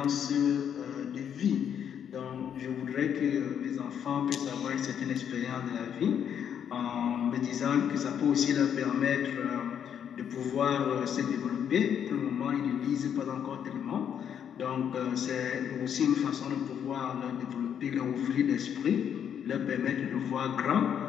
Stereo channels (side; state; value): right; quieter; 8.6 dB